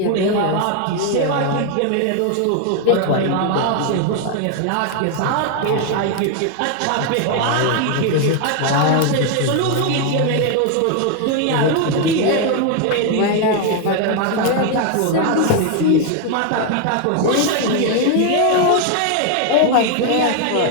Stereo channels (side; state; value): both; different; correlation 0.00